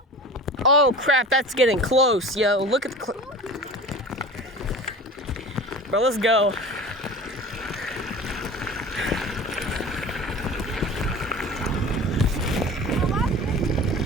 Oh crap, that's getting close, yo. Look at the bro, let's go.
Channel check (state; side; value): normal; both; correlation 0.37